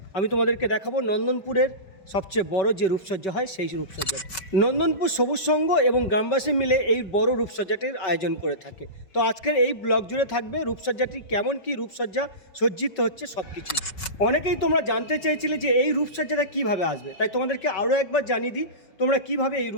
আমি তোমাদেরকে দেখাবো নন্দনপুরের সবচেয়ে বড় যে রূপসজ্জা হয় সেই রূপসজ্জা। নন্দনপুর সবুজ সংঘ এবং গ্রামবাসী মিলে এই বড় রূপসজ্জাটির আয়োজন করে থাকে। তো আজকের এই ব্লগ জুড়ে থাকবে রূপসজ্জাটি কেমন কি রূপসজ্জা সজ্জিত হচ্ছে সব কিছু। অনেকেই তোমরা জানতে চেয়েছিলে যে এই রূপসজ্জাটা কিভাবে আসবে, তাই তোমাদেরকে আরও একবার জানিয়ে দিই তোমরা কিভাবে এই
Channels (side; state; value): right; late; 5.3 ms